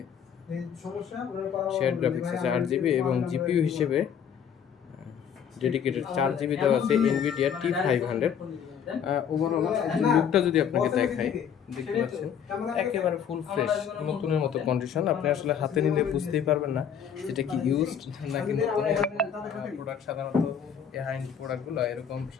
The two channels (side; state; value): right; quieter; 8.0 dB